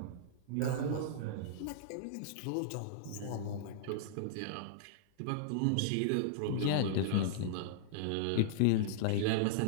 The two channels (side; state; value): both; different; correlation -0.02